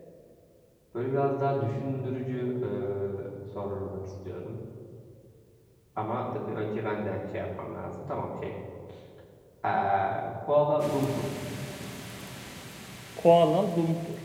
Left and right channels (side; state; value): both; identical; correlation 1.00